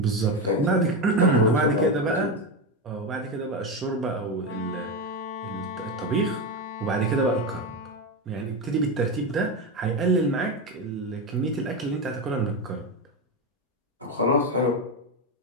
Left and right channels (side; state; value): both; normal; correlation 0.14